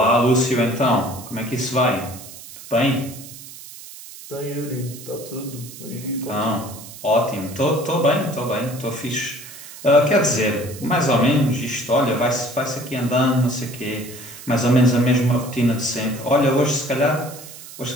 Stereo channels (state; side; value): noise; right; hiss, 15 dB below the sound